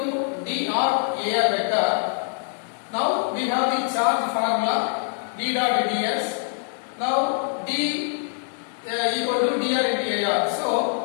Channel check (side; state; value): right; silent; 55 dB below the other